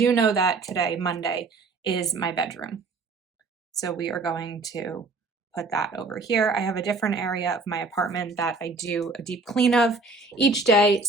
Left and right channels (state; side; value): quieter; left; 3.6 dB